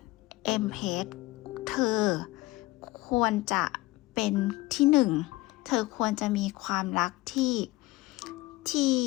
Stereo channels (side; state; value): right; quieter; 19.9 dB